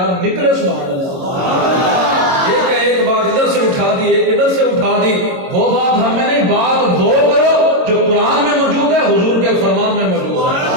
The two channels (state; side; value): late; left; 22 ms